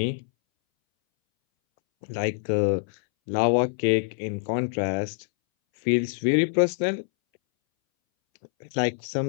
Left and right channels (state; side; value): silent; right; 61 dB below the other